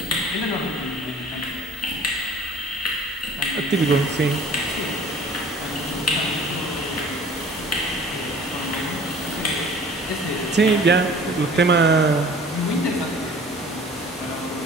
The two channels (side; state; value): both; normal; correlation 0.48